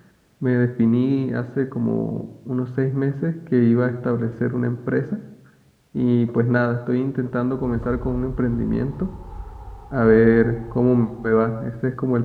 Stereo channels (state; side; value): identical; both; correlation 1.00